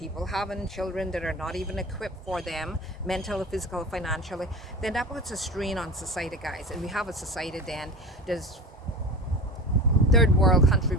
having children that are not even equipped for them, mental, physical, financially, then that puts a strain on society, guys. And we have a society then, there's third world country,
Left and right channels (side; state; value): both; normal; correlation 0.32